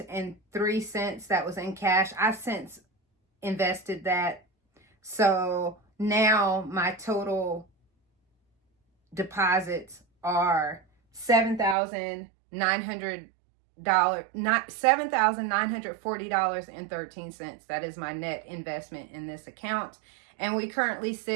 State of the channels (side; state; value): left; drops out; at 11.8 s